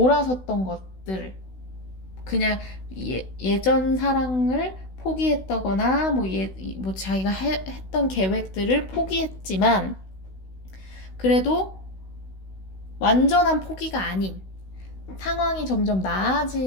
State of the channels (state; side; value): late; right; 16 ms